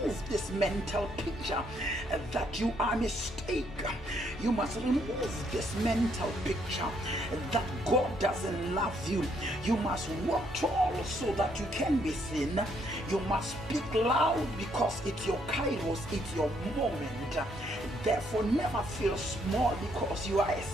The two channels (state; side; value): normal; both; correlation 0.71